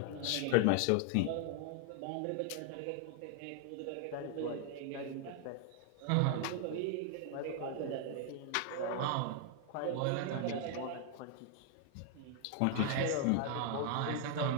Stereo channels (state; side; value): different; both; correlation 0.00